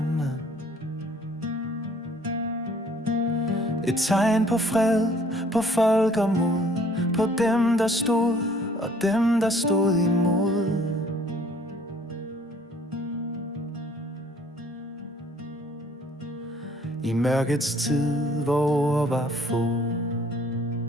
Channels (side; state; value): both; normal; correlation 0.58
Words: Et tegn på fred, på folk og mod, på dem, der stod og dem, der stod imod. I mørkets tid, hvor var få,